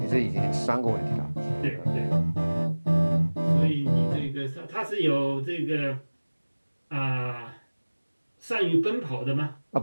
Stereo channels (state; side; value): inverted; both; correlation -1.00